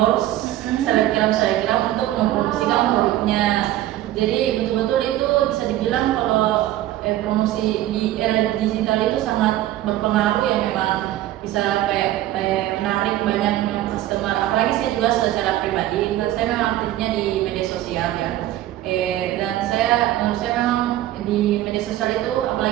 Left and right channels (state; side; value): quieter; left; 14.1 dB